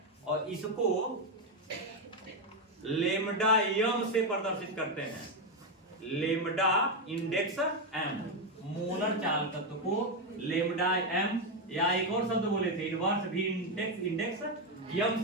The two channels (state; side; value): normal; both; correlation 0.07